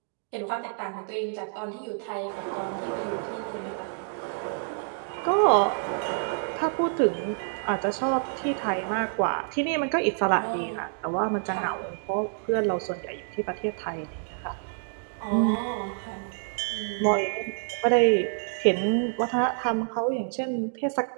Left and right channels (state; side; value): silent; left; digital silence